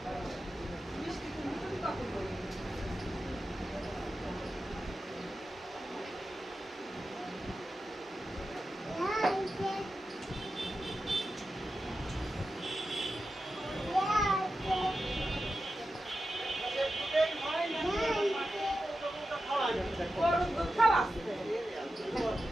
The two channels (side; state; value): both; normal; correlation 0.91